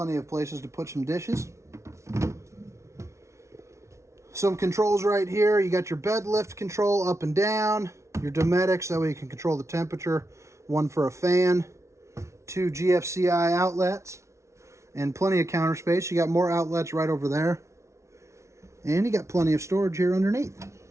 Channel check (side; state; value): left; late; 0.14 ms